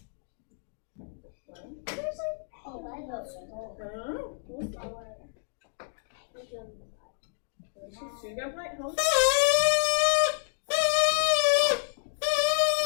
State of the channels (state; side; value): silent; right; digital silence